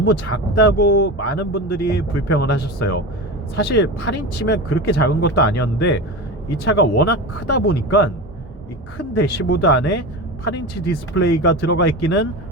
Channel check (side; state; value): both; normal; correlation 0.26